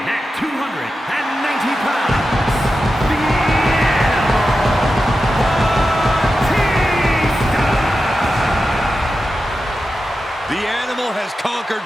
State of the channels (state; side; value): normal; both; correlation 0.91